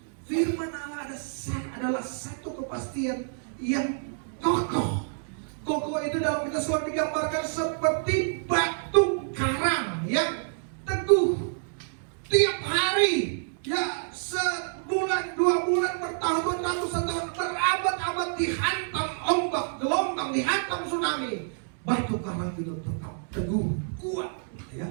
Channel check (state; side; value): silent; left; digital silence